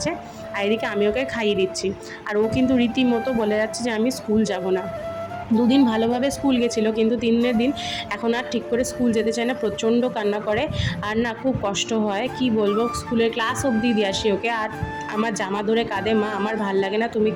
আর এদিকে আমি ওকে খাইয়ে দিচ্ছি। আর ও কিন্তু রীতিমতো বলে যাচ্ছে যে আমি স্কুল যাব না। দুদিন ভালোভাবে স্কুল গেছিলো, কিন্তু 3 দিন এখন আর ঠিক করে স্কুল যেতে চায় না, প্রচণ্ড কান্না করে, আর না খুব কষ্ট হয়, কি বলবো, স্কুলের ক্লাস অবধি দিয়ে আসি ওকে, আর আমার জামা ধরে কাঁদে, মা আমার ভাল লাগে না, তুমি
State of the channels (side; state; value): both; identical; correlation 1.00